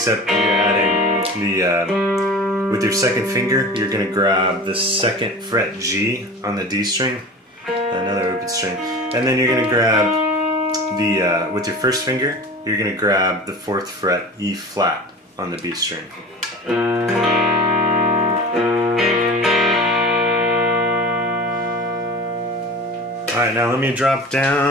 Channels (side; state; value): both; normal; correlation 0.35